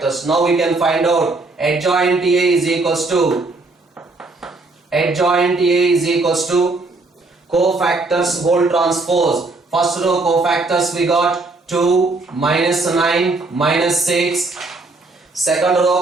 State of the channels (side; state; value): left; quieter; 3.4 dB